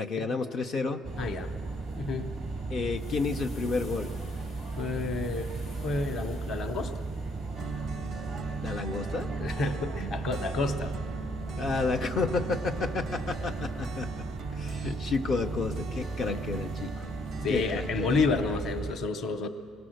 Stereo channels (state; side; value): normal; both; correlation 0.67